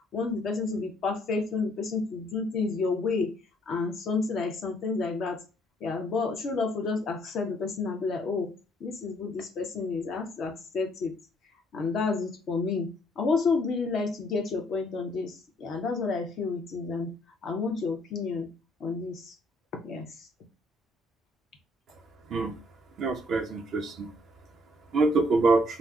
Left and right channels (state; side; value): normal; both; correlation 0.65